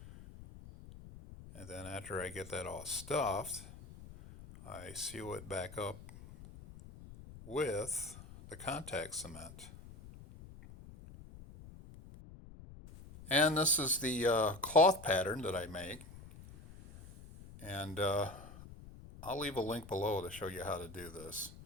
And then after I get that all stuffed, I seal it back up with the contact cement. And this is the cloth pattern that I make. And I'll leave a link below to show you how to do this.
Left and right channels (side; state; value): left; noise; rumble, 16 dB below the sound